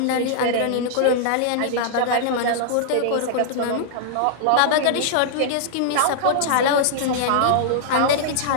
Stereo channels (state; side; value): different; both; correlation -0.01